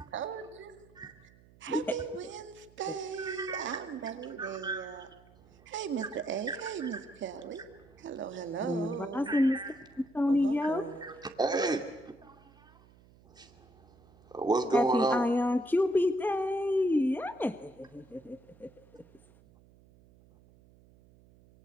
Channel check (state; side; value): noise; right; hum, 26 dB below the sound